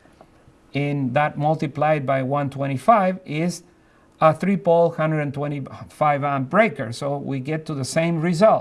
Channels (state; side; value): identical; both; correlation 1.00